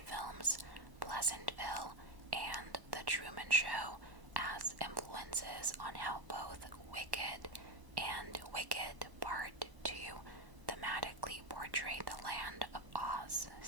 films Pleasantville and The Truman Show as influences on how both Wicked and Wicked Part 2 thematically portray the Land of Oz,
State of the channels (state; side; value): late; left; 1.1 ms